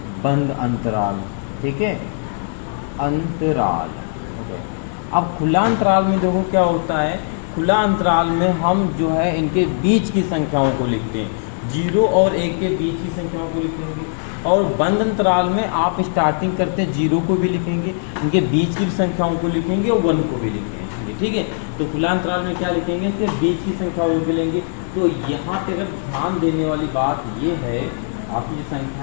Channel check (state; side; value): silent; right; digital silence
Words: बंद अंतराल। ठीक है, अंतराल। ओके, अब खुला अंतराल में देखो क्या होता है, खुला अंतराल में हम जो है इनके बीच की संख्याओं को लिखते हैं, 0 और 1 के बीच की संख्याओं को लिखेंगे। और बंद अंतराल में आप स्टार्टिंग करते हैं 0 को भी लिखेंगे, इनके बीच की संख्याओं को लिखेंगे और 1 को भी लिखेंगे। ठीक है, तो खुला अंतराल में क्या लिखेंगे, इसके बीच की संख्याओं को लिखेंगे। तो यहाँ पे अगर ध्यान देने वाली बात ये है, आपकी जो